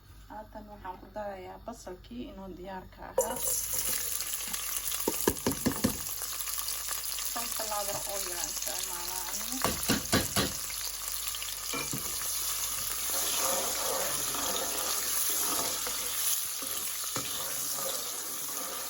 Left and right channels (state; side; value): normal; both; correlation 0.95